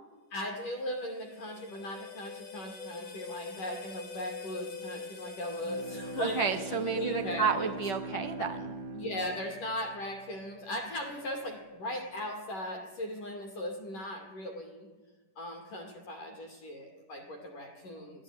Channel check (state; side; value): late; right; 10 ms